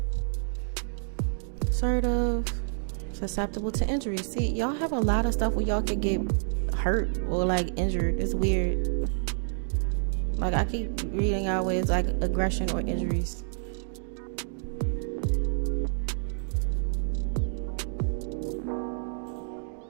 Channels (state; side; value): silent; left; digital silence